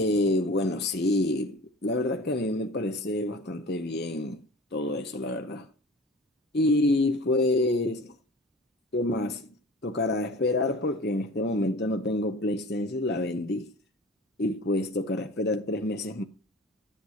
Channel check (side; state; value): both; normal; correlation 0.40